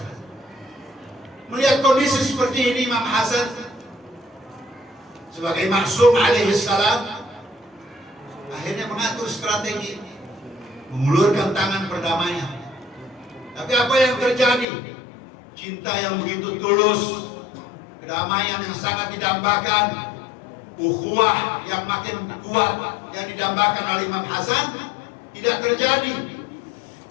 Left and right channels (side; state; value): right; drops out; at 14.7 s